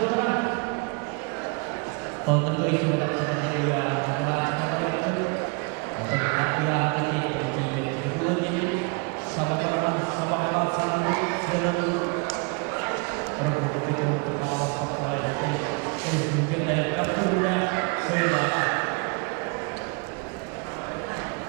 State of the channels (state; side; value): quieter; left; 32.9 dB